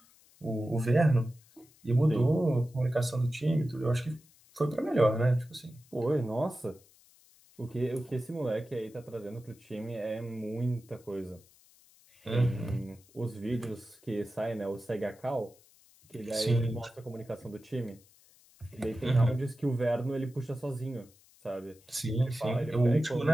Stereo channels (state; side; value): noise; left; hiss, 28 dB below the sound